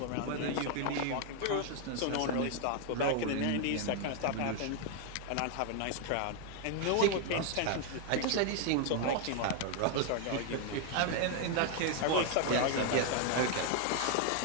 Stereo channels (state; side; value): different; both; correlation 0.00